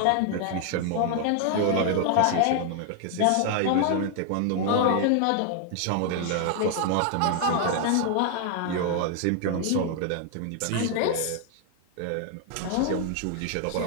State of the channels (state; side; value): different; both; correlation 0.00